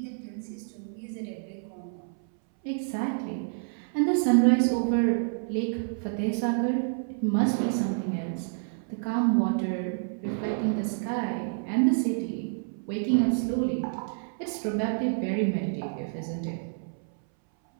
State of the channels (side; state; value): left; silent; 59 dB below the other